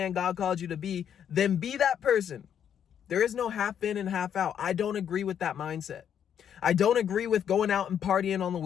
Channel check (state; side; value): quieter; right; 8.9 dB